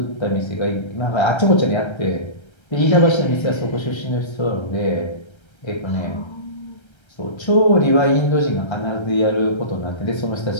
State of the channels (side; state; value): right; late; 1.3 ms